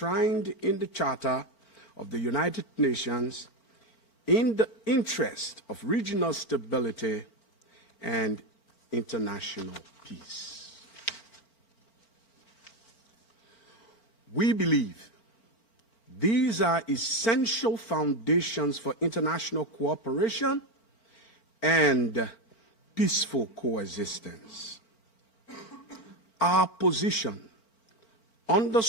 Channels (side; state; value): right; late; 4.4 ms